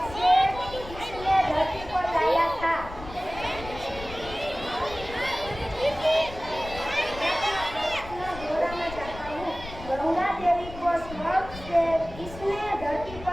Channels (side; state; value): left; noise; rumble, 13 dB below the sound